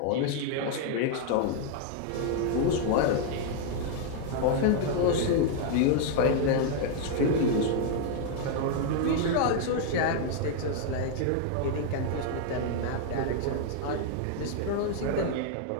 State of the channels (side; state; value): both; different; correlation 0.00